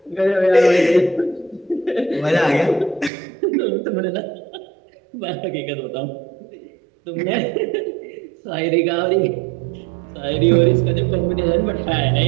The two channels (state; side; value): drops out; left; at 3.1 s